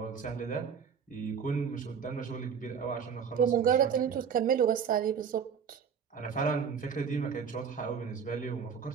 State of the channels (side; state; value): left; quieter; 7.0 dB